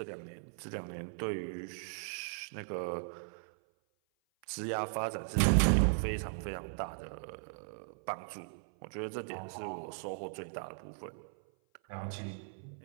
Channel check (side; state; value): left; silent; 53 dB below the other